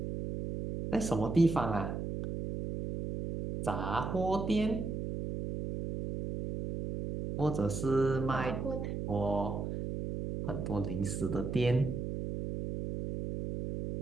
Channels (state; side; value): noise; right; hum, 4 dB below the sound